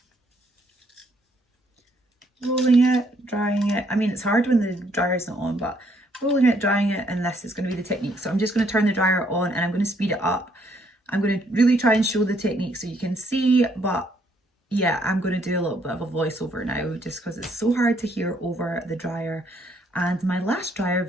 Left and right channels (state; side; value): normal; both; correlation 0.69